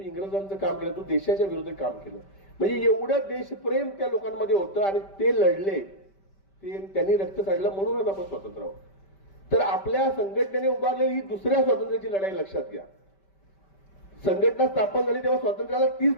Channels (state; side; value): late; right; 5.1 ms